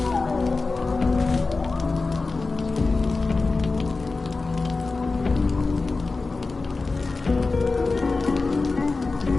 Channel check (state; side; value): quieter; right; 3.8 dB